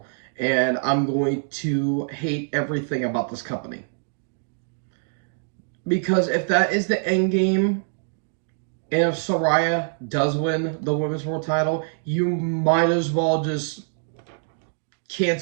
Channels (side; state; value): left; silent; 60 dB below the other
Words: And I'm going to hate everything about this company. Because if that is the end game, and if Saraya does win the women's world title, you might as well just